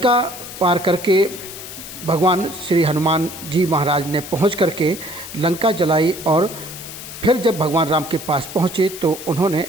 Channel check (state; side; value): noise; left; hiss, 12 dB below the sound